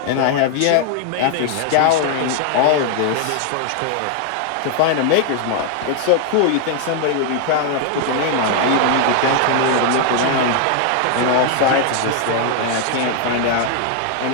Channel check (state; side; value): different; both; correlation 0.00